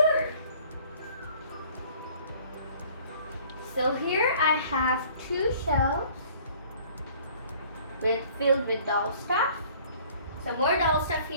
So here I have two shelves filled with doll stuff. Some more doll stuff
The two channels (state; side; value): inverted; both; correlation -0.54